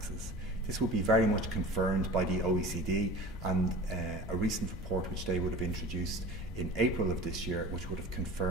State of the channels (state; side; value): normal; both; correlation 0.38